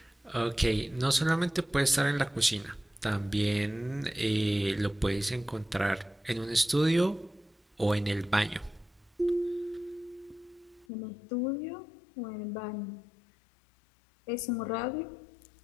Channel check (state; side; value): drops out; right; at 10.9 s